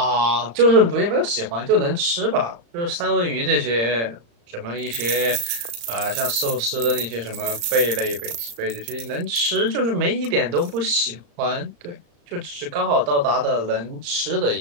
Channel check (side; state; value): left; late; 35 ms